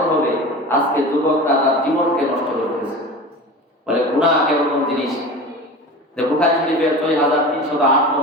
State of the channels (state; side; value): normal; both; correlation 0.33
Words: হবে। আজকে যুবকটা তার জীবনকে নষ্ট করতেছে। বলে গুনাহ কেমন জিনিস? যে বুখারী শরীফের ৬৩০৮